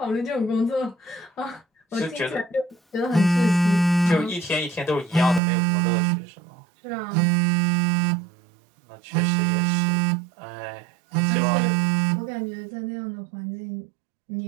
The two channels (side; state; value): left; drops out; at 5.4 s